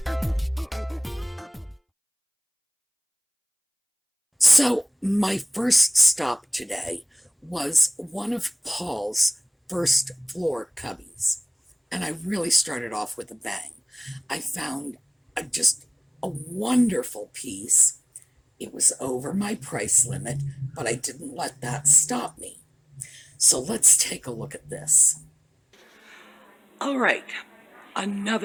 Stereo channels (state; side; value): identical; both; correlation 1.00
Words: So, my first stop today was one of Paul's first floor cubbies. And I really started off with a bang. I found just a wonderful piece. It was over my price limit, but I didn't let that stop me. So let's take a look at this. All right,